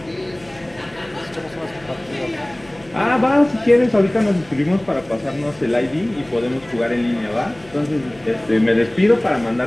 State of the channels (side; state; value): left; noise; hum, 25 dB below the sound